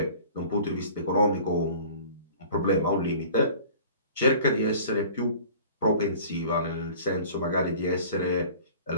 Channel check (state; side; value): inverted; both; correlation -0.46